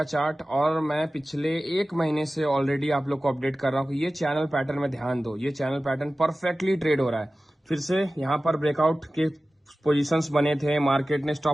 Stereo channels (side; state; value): both; normal; correlation 0.96